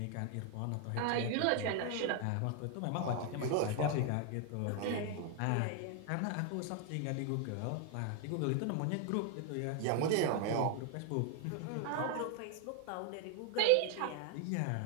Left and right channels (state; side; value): different; both; correlation 0.00